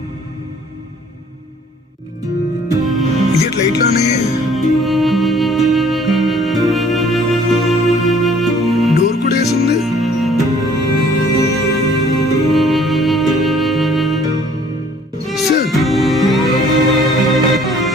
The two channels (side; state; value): both; normal; correlation 0.57